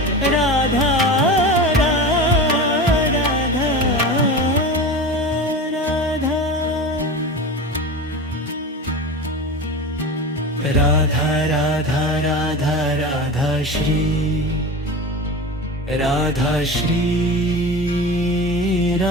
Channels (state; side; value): normal; both; correlation 0.29